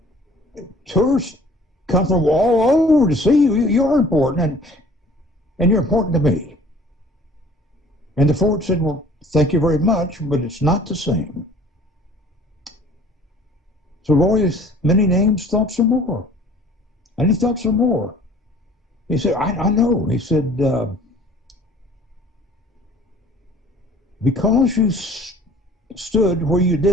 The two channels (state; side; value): normal; both; correlation 0.51